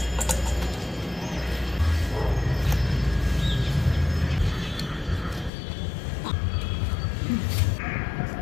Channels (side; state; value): right; drops out; at 5.5 s